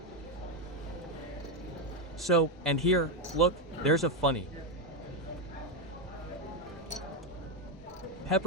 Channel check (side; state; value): both; normal; correlation 0.07